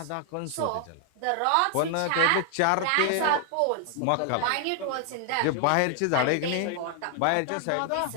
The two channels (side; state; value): both; different; correlation 0.00